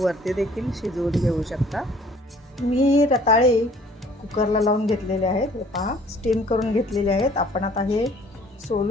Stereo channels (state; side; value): normal; both; correlation 0.55